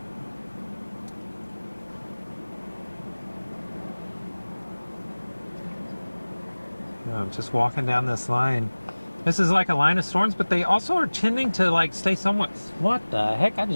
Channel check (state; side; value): inverted; both; correlation -1.00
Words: I'm just walking down this line. This is like a line of storms, but they also are tending to like stay somewhat. What the heck? I